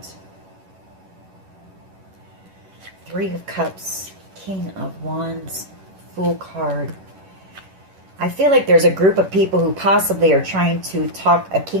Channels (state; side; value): late; left; 11 ms